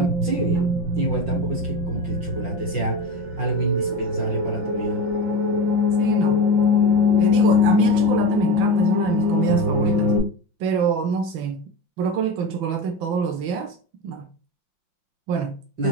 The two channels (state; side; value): late; left; 6.0 ms